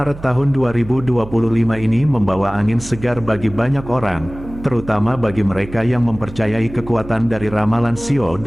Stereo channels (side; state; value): right; noise; hum, 15 dB below the sound